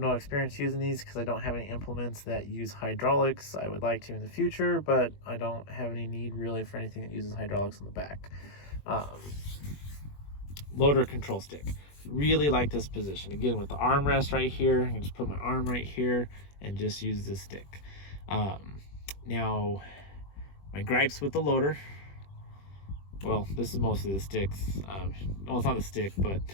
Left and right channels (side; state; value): right; late; 21 ms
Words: experience using these because I don't have any implements that use hydraulics. I would like to in the future, but I don't have any need really for anything that uses hydraulics on the back. Loader control stick. Really like this position. Again, with the armrest right here, I can just put my arm right here and just use this stick. Now, my gripes with the loader, well, this is mostly the sticks. Well, it's not a stick, but